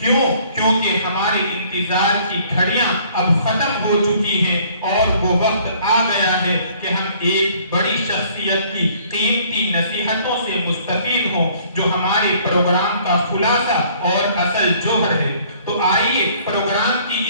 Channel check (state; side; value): inverted; both; correlation -0.58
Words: کیوں؟ کیونکہ ہمارے انتظار کی گھڑیاں اب ختم ہو چکی ہیں اور وہ وقت آ گیا ہے کہ ہم ایک بڑی شخصیت کی قیمتی نصیحتوں سے مستفید ہوں جو ہمارے پروگرام کا خلاصہ اور اصل جوہر ہے. تو آئیے پروگرام کی